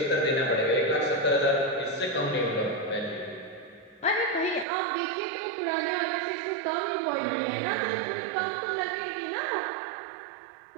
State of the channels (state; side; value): drops out; left; at 4.7 s